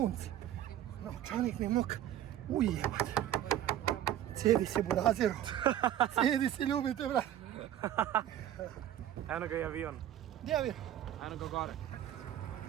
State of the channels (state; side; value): quieter; left; 11.8 dB